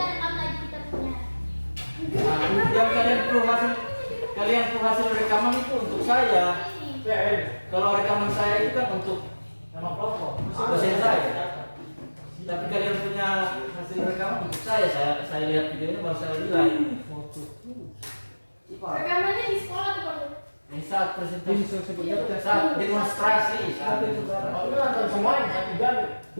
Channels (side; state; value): both; inverted; correlation -1.00